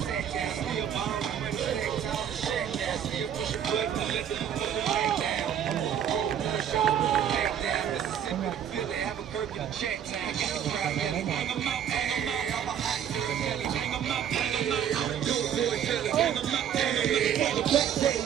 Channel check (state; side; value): quieter; left; 9.2 dB